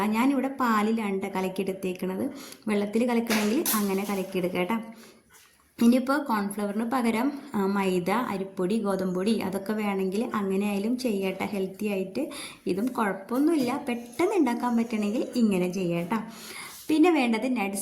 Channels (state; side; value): identical; both; correlation 1.00